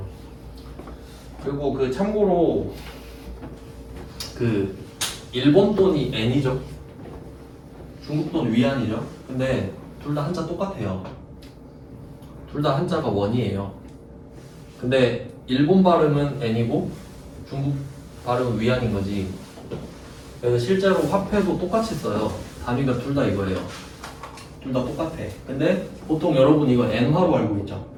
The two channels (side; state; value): both; identical; correlation 1.00